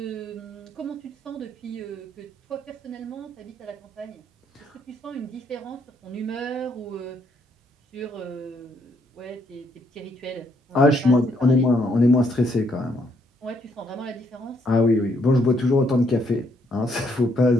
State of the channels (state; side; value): normal; both; correlation 0.71